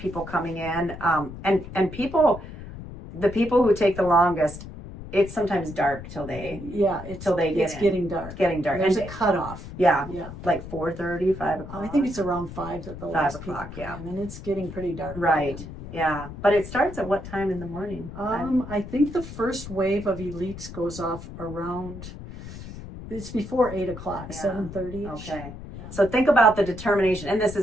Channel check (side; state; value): left; noise; rumble, 12 dB below the sound